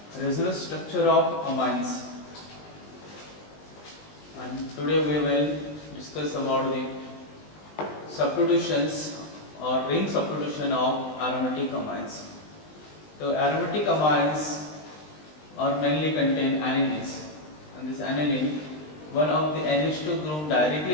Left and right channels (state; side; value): late; right; 20 ms